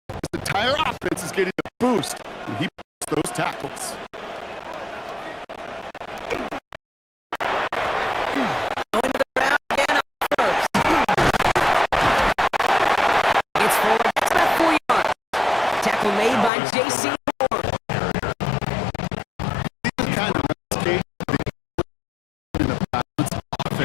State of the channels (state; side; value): drops out; right; at 16.5 s